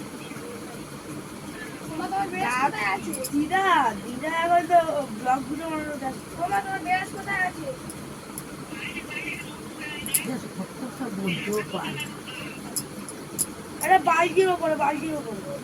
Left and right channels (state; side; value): identical; both; correlation 1.00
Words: দিদা দিদা এখন তো ব্লগ গুলো তোমার বেশ কোথায় আছে? বলতেও পারে। আরে বালতির ওপরে, বালতির ওপরে।